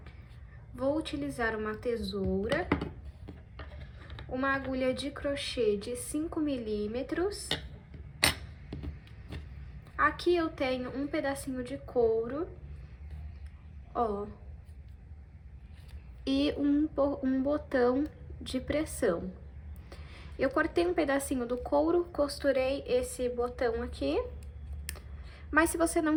Vou utilizar uma tesoura, uma agulha de crochê de 5 milímetros. Aqui eu tenho um pedacinho de couro, ó, e um botão de pressão. Eu cortei um pedacinho do couro, costurei esse botão aqui, mas se você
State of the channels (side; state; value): both; identical; correlation 1.00